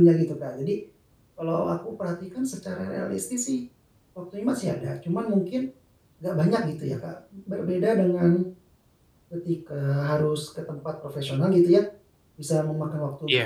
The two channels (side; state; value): both; identical; correlation 1.00